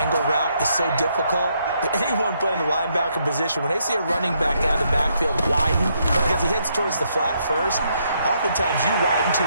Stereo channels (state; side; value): inverted; both; correlation -0.74